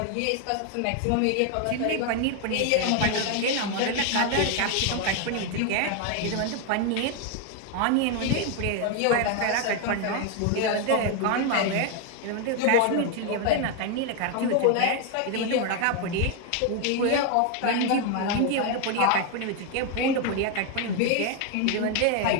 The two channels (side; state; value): both; different; correlation 0.01